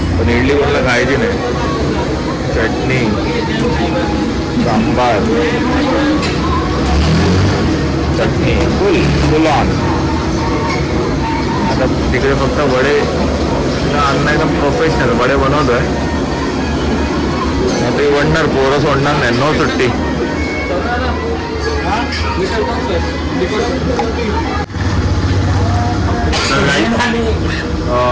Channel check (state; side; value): identical; both; correlation 1.00